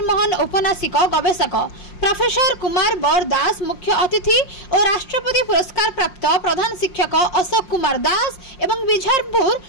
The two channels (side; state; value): right; late; 5.6 ms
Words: उपन्यासिक गवेषक प्रोफेसर कुमार बर दास मुख्य अतिथि और राष्ट्रपति पुरस्कार प्राप्त प्रधान शिक्षक अशोक कुमार दास एवं बिझारपुर